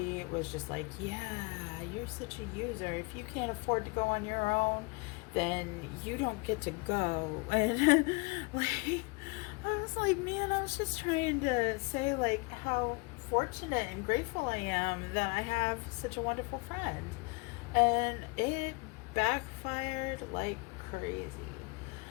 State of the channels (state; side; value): quieter; right; 28.3 dB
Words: was just like, yeah, you're such a user. If you can't afford to go on your own, then you don't get to go. And like, I was like, man, I was just trying to say, like, how fortunate and grateful I am that I have such a wonderful friend. And it backfired like crazy.